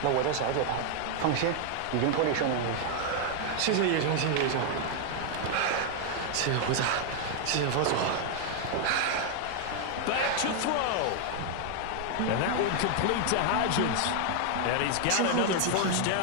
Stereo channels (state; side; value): different; both; correlation 0.00